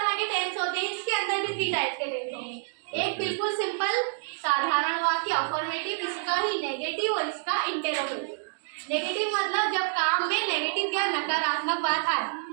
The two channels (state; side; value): silent; left; digital silence